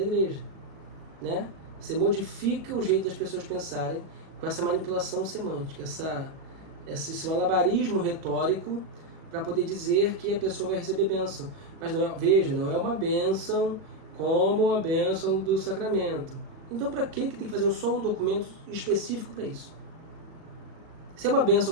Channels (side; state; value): left; late; 37 ms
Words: igreja, né? Você modifica o jeito das pessoas pensarem com essa manipulação semântica, esse malabarismo retórico para poder dizer que a pessoa vai receber bênção. Mas não é uma bênção como a bênção do sacramento. Então para que tem que fazer só um documento específico para isso? Se é uma